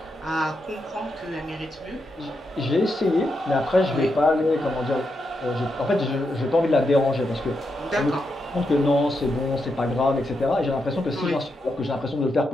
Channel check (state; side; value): normal; both; correlation 0.84